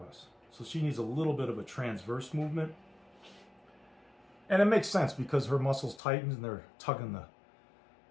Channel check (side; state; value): right; drops out; at 6.0 s